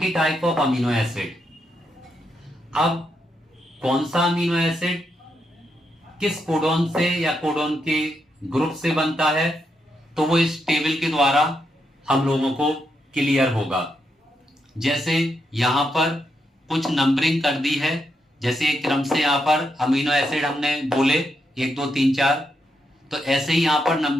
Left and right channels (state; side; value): normal; both; correlation 0.82